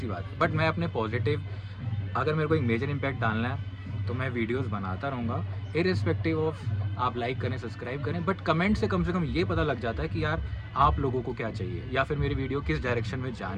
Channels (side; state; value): both; identical; correlation 1.00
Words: बात है। बट मैं अपने पॉजिटिव, अगर मेरे को एक मेजर इम्पैक्ट डालना है तो मैं वीडियोस बनाता रहूँगा, इर्रिस्पेक्टिव ऑफ आप लाइक करें, सब्सक्राइब करें, बट कमेंट से कम ये पता लग जाता है कि यार आप लोगों को क्या चाहिए, या फिर मेरी वीडियो किस डायरेक्शन में